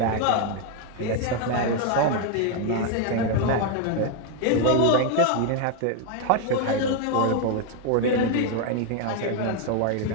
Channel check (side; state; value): both; different; correlation 0.01